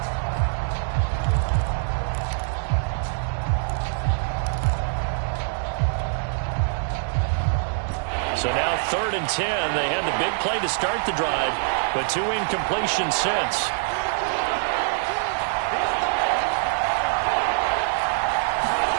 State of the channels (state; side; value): silent; left; digital silence